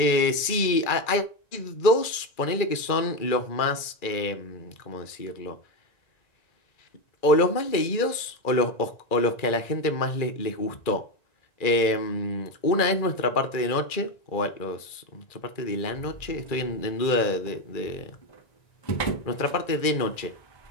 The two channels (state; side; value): late; right; 2.3 ms